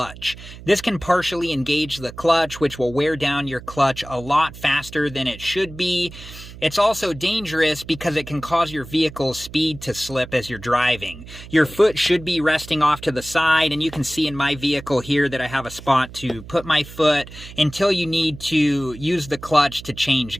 This can partially engage the clutch, which will wear down your clutch a lot faster than it should be. It's also dangerous because it can cause your vehicle's speed to slip as you're driving. Your foot should be resting off to the side, and you can see in my vehicle here that I have a spot to put my foot until you need to use the clutch to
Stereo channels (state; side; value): noise; right; hum, 16 dB below the sound